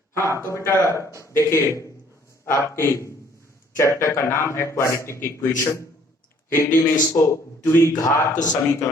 हाँ तो बेटा देखिए, आपके चैप्टर का नाम है क्वाड्रेटिक इक्वेशन। हिंदी में इसको द्विघात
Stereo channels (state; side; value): normal; both; correlation 0.60